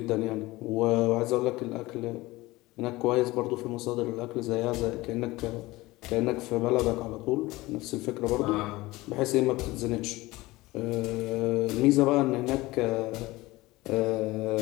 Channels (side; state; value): right; quieter; 19.9 dB